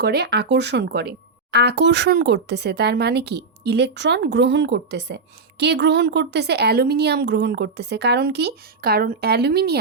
করে? আকর্ষণ করে। আকর্ষণ করতেছে তার মানে কি? ইলেকট্রন গ্রহণ করতেছে। কে গ্রহণ করতেছে? অ্যালুমিনিয়াম গ্রহণ করতেছে। কারণ কি? কারণ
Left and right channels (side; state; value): left; quieter; 4.3 dB